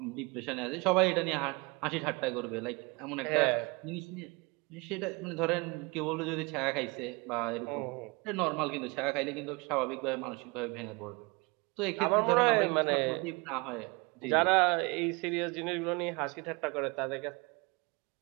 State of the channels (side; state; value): left; quieter; 27.2 dB